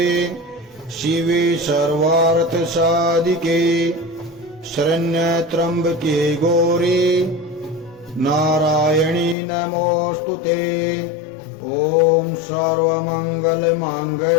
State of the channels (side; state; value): right; drops out; at 9.3 s